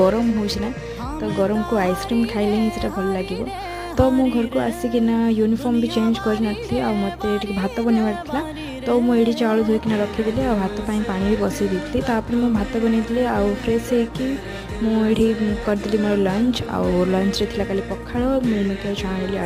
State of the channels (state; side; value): identical; both; correlation 1.00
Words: होना तो गरम को आइसक्रीम खाइले ही से भल लगे। तो मो घर को आसिकिना यूनिफॉर्म भी चेंज कर नी आ मत भात बनवार तो मुझे चाउल धोईकिना रखीदी आ भात पानी भी बसई दी तापर मु भात बनई आ फ्रेश होगी मुझे करदेली मोर लंच आउ लंच रे थिला काली पखाळ मिलमिकर छाणी